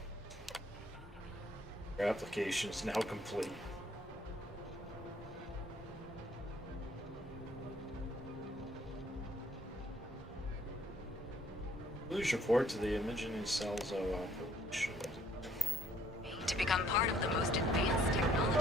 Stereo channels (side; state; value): both; normal; correlation 0.63